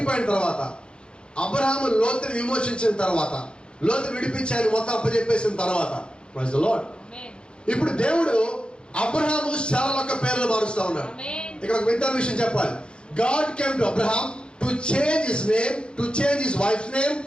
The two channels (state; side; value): late; right; 0.053 ms